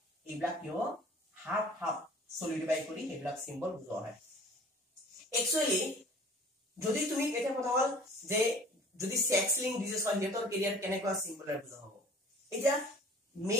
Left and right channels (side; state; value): both; normal; correlation 0.48